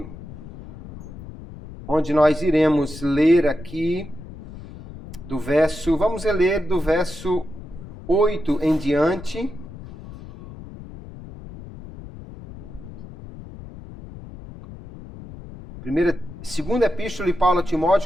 onde nós iremos ler aqui vamos ler do verso 8 em diante. Segunda epístola de Paulo a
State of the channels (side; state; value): left; noise; rumble, 14 dB below the sound